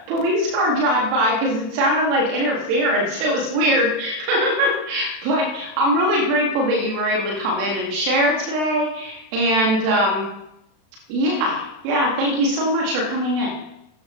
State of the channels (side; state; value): left; late; 36 ms